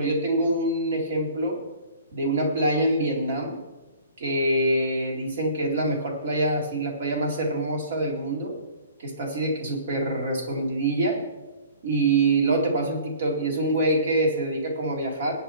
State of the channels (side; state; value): both; inverted; correlation -0.49